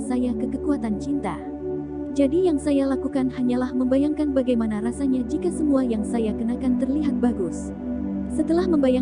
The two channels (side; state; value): both; identical; correlation 1.00